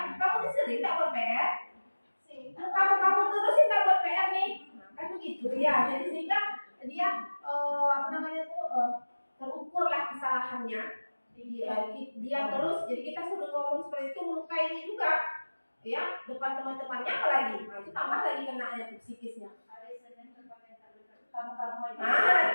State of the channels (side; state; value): both; inverted; correlation -1.00